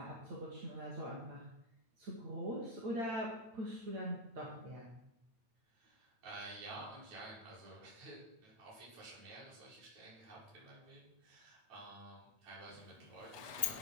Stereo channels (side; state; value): left; late; 8.3 ms